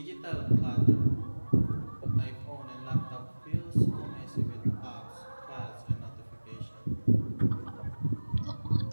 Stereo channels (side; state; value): both; inverted; correlation -1.00